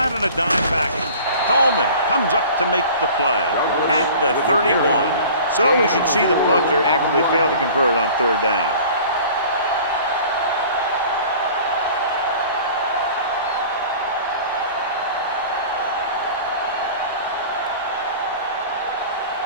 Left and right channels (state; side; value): inverted; both; correlation -0.44